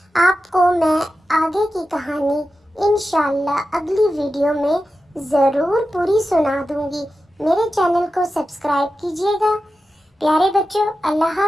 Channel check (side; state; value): both; normal; correlation 0.92